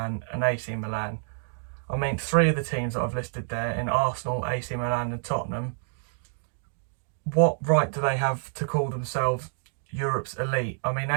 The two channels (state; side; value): silent; left; 59 dB below the other